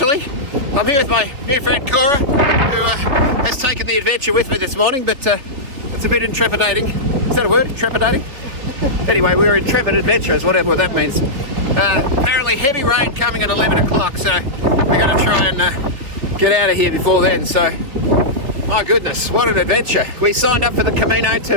I'm here with my new friend Cora, who has taken the adventure with me this morning, but it's a bit intrepidating. Is that a word? Intrepidating? Anyway, we were intrepid adventurers, whatever that means. Apparently heavy rain coming at 11 o'clock, so we're going to try and get out of here before then. So, my goodness, what an adventure. We signed up for the Camino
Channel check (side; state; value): left; late; 3.3 ms